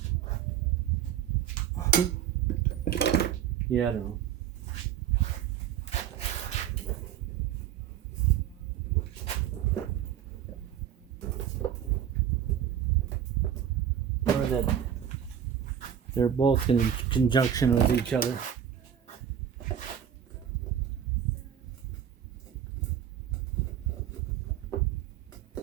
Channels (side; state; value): left; quieter; 9.5 dB